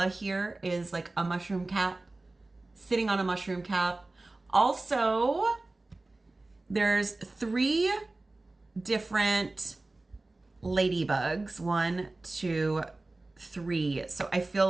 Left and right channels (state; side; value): quieter; left; 3.0 dB